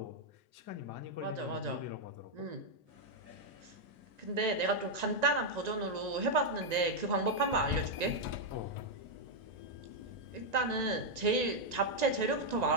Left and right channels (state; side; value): late; left; 1.9 ms